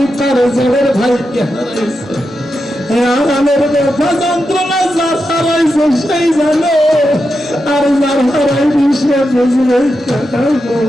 তার জেলের ভাইকে হারাইছে। আরামের ব্যথা যন্ত্রণা যার হারাইছে সেই জানে, আর যার হারাইনি সে বুঝবে।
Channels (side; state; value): both; normal; correlation 0.88